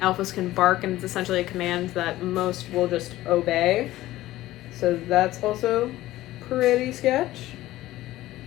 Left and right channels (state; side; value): quieter; right; 16.0 dB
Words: alphas can bark, and it's essentially a command that most will just obey, so that's also pretty sketch.